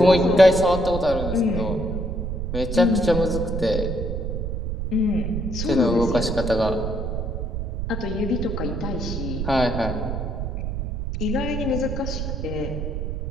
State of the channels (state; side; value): noise; right; rumble, 3 dB below the sound